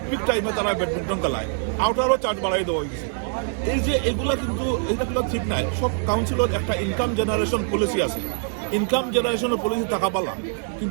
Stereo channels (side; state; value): left; silent; digital silence